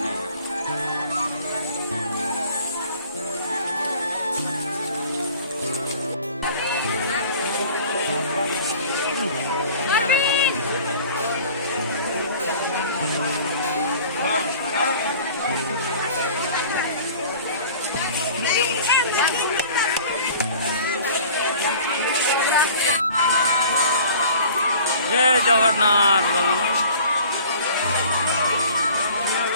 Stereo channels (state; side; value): inverted; both; correlation -0.46